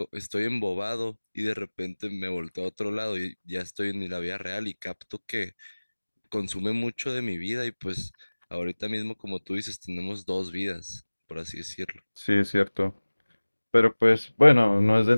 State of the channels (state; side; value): inverted; both; correlation -1.00